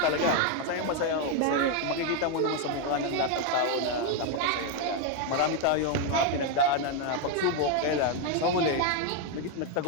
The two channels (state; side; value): different; both; correlation 0.01